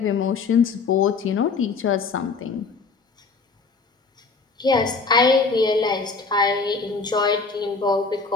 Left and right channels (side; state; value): right; quieter; 4.4 dB